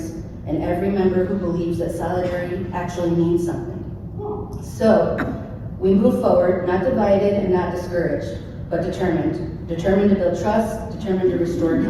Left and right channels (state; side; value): identical; both; correlation 1.00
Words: and every member who believes that solidarity actually means something. So, we move forward, not divided and not discouraged, but determined. Determined to build trust, determined to restore